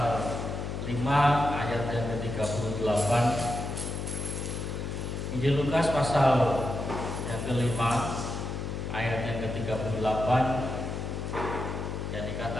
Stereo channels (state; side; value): noise; left; hum, 4 dB below the sound